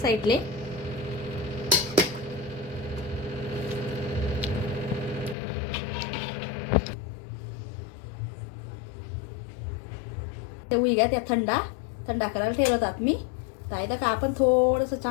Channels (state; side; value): drops out; right; at 5.4 s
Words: ते होई गया त्या थंडा करायला ठेवतात मी. तर आहे का आपण थोडंसं